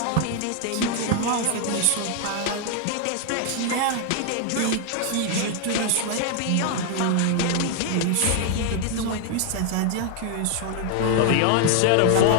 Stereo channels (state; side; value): different; both; correlation 0.00